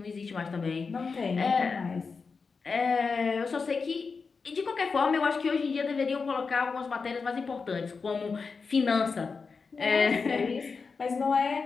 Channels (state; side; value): quieter; right; 4.9 dB